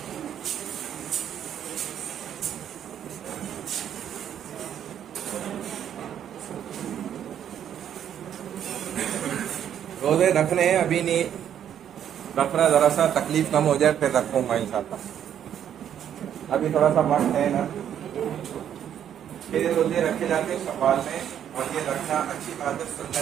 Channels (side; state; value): left; quieter; 9.7 dB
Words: روزے رکھنے ہیں، ابھی نہیں رکھ رہا، ذرا سا تکلیف کم ہو جائے پھر رکھوں گا انشاءاللہ. ابھی تھوڑا سا وقت ہے نا. پھر روزے رکھے جاتے ہیں شوال میں، اور یہ رکھنا اچھی بات ہے،